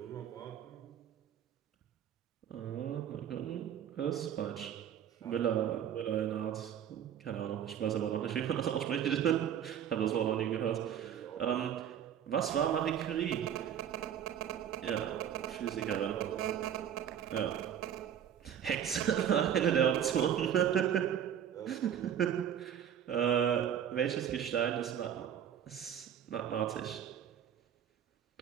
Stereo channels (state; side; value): quieter; left; 9.4 dB